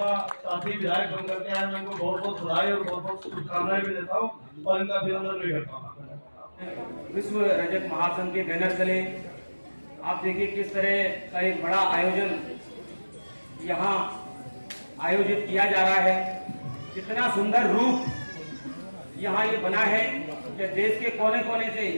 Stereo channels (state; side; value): inverted; both; correlation -1.00